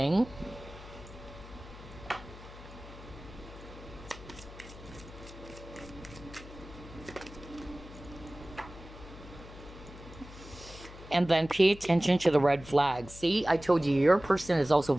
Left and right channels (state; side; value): noise; left; hum, 16 dB below the sound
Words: And then pay attention to the red flags. See, I told you, your person is also